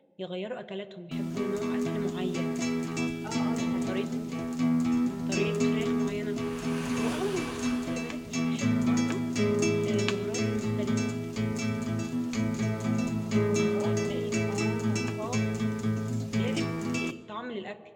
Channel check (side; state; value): both; identical; correlation 1.00